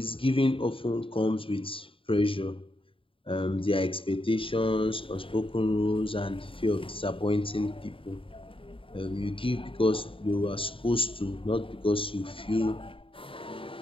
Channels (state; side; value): late; right; 0.26 ms